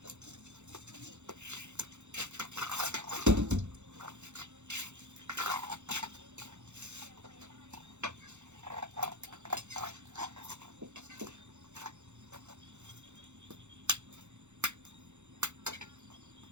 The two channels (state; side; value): late; left; 0.83 ms